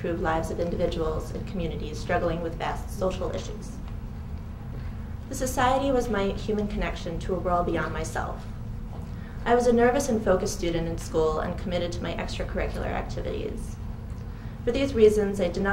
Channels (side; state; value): both; identical; correlation 1.00